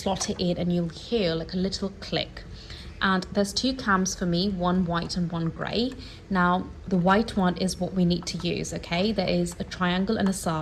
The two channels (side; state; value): both; identical; correlation 1.00